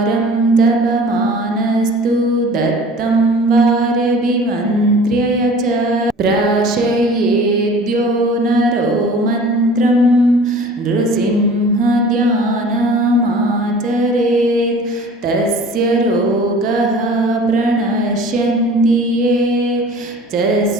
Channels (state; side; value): normal; both; correlation 0.45